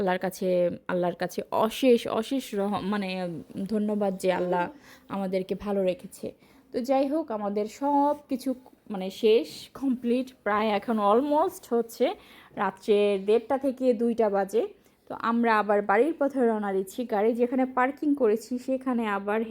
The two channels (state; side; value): identical; both; correlation 1.00